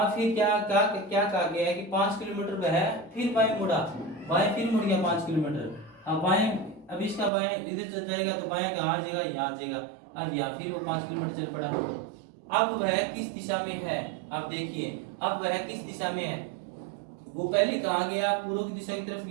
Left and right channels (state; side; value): drops out; left; at 7.3 s